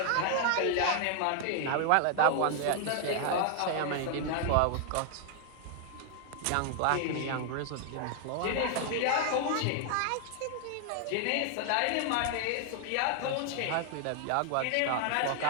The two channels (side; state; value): both; different; correlation 0.00